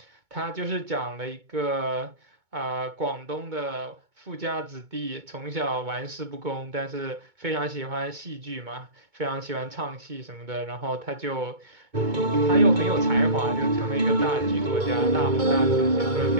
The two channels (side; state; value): left; late; 2.2 ms